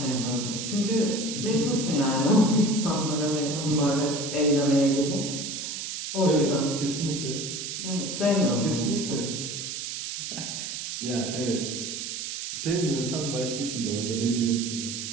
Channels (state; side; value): noise; right; hiss, 5 dB below the sound